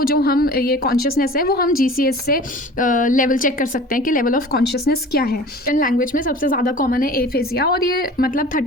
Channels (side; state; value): both; normal; correlation 0.41